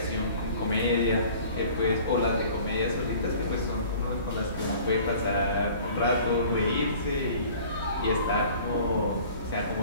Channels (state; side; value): inverted; both; correlation -0.48